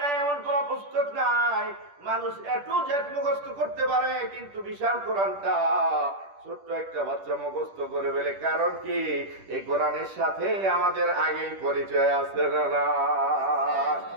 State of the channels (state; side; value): late; left; 10 ms